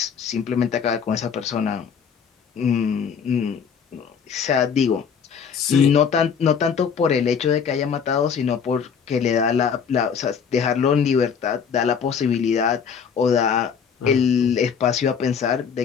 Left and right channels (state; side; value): quieter; right; 6.8 dB